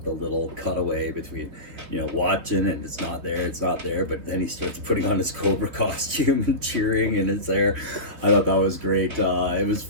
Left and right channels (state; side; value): late; left; 3.5 ms